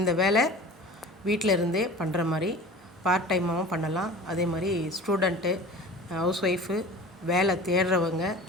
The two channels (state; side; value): normal; both; correlation 0.39